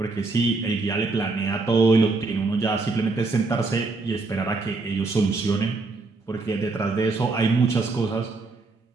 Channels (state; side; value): quieter; left; 3.6 dB